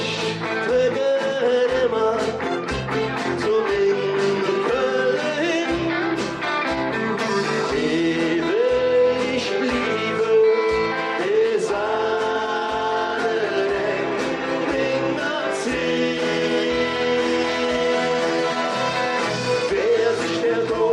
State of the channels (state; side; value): identical; both; correlation 1.00